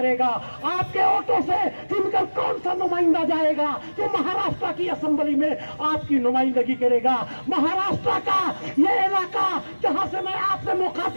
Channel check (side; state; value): both; inverted; correlation -1.00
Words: आपके वोटों से चुनकर कौन सा नुमाइंदा जाएगा जो महाराष्ट्र की असेंबली में आपकी नुमाइंदगी करेगा। महाराष्ट्र का ये इलाका जहां से मैं आपसे